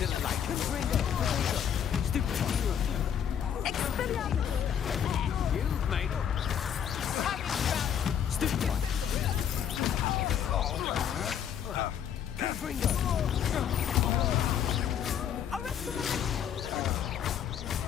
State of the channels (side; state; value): right; quieter; 8.9 dB